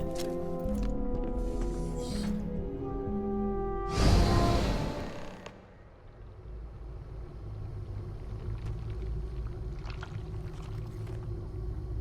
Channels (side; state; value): both; identical; correlation 1.00